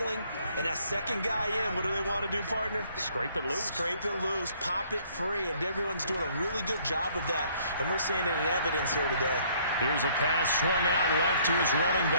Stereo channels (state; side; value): inverted; both; correlation -0.62